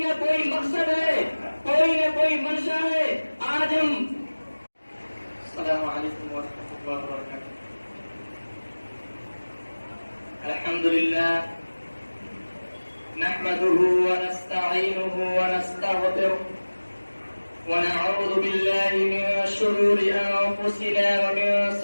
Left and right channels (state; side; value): inverted; both; correlation -1.00